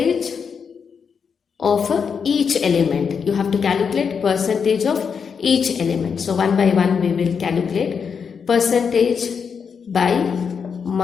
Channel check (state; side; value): quieter; right; 6.3 dB